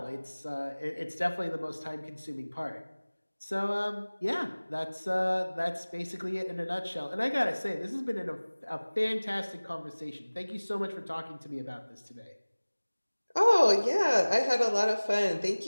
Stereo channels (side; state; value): both; inverted; correlation -1.00